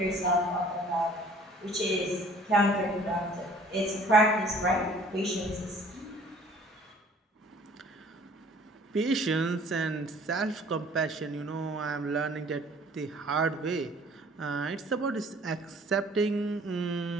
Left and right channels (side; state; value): both; normal; correlation 0.53